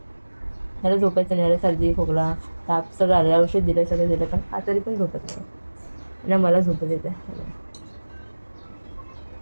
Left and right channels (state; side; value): inverted; both; correlation -1.00